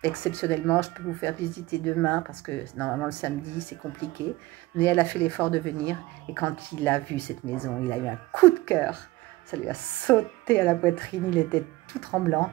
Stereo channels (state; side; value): quieter; left; 19.1 dB